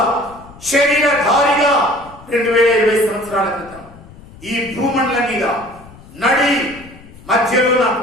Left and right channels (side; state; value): left; noise; rumble, 21 dB below the sound